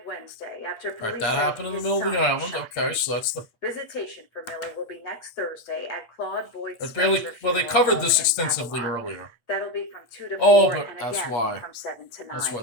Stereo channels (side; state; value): right; late; 8.4 ms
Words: Wednesday after all right, police that said happened in the his middle of the son island. shot Okay, him. so that's the. Visitation for Miller will be next Thursday at Claude Boyd That's Spencer barely. Well, they Funeral covered Home this in extensively Babylon. earlier. That'll be from 2 to 4 Oh, but and that's again why. from 7 to 9. That's why